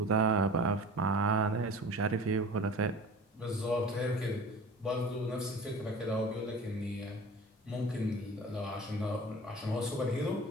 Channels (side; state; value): both; normal; correlation 0.39